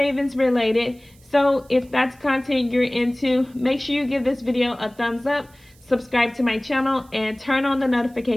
related. So if that's content you're into, make sure you give this video a thumbs up, subscribe to my channel, and turn on the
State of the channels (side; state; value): right; noise; hiss, 29 dB below the sound